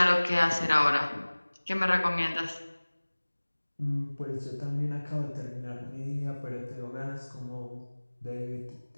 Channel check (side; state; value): both; inverted; correlation -1.00